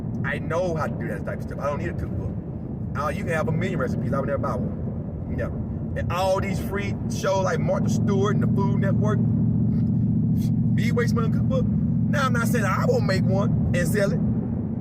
I know how to do that type of stuff. I don't need a cookbook. You can have a million recipes. I would never buy one. Never. And all these free shows like Martha Stewart and the Food Network, be waste money on cookbook. Now I'm not saying I won't make one and sell it,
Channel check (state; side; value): identical; both; correlation 1.00